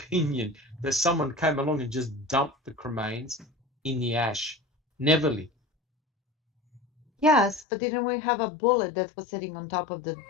that someone came along and just dumped the cremains in the ash. Neverly. Yes, but didn't we have a bullet that was sitting on top of the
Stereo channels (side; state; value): right; drops out; at 7.7 s